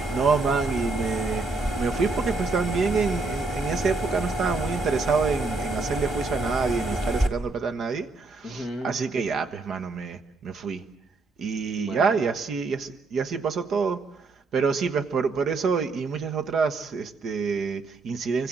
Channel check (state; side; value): quieter; left; 3.8 dB